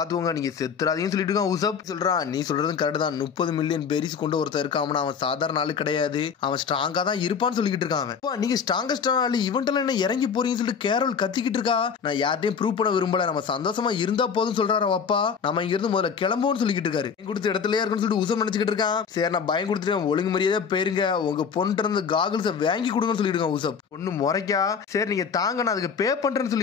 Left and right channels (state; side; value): quieter; right; 6.5 dB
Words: நீங்க செத்துறாதீங்கன்னு சொல்லிட்டு இருக்கான் உசப். சொல்றான் நீ சொல்றதும் கரெக்ட் தான், 30 மில்லியன் பெரிஸ் கொண்டு ஒருத்தர் இருக்கான், அவன் சாதாரண ஆளு கிடையாது, அவன் ஸ்ட்ராங்கா தான் இருப்பான்னு சொல்லிக்கிட்டு இருக்கான். நீங்க ஸ்ட்ராங்கஸ்டான ஆளு, இவன்ட்டெல்லாம் என்ன இறங்கி போறீங்கன்னு சொல்லிட்டு கேரோல் கத்திக்கிட்டு இருக்கா. நான் யார்ட்டையும் ப்ரூவ் பண்ண விரும்பல, நம்ம சந்தோஷமா இருந்தா போதும் சொல்றாரு அப்பா. நம்ம இங்க இருந்து முதல்ல கிளம்புவோம்னு சொல்லிக்கிட்டு இருக்காரு. கொடுத்த இடத்துல இருக்குன்னு சொல்லிட்டு உசப் நினைச்சுக்கிட்டு இருக்கான். சரி நான் பயம் கொடுத்துருக்கேன், ஒழுங்கு மரியாதை போயிருங்க, உங்க பொண்ணு இருந்து காகிள்ஸ் வாங்கி கொடுங்கன்னு சொல்லிட்டு இருக்கான் உசப். பொண்ணு முறைக்கா சரி நீங்க தாங்க நான் அதுக்கு பே பண்றேன்னு